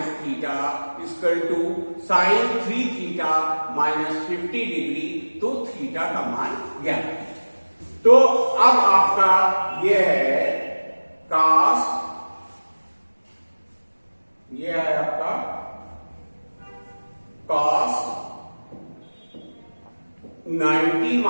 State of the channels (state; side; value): inverted; both; correlation -1.00